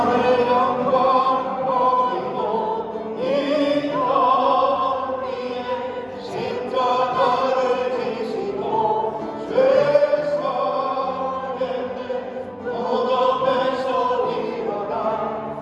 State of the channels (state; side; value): identical; both; correlation 1.00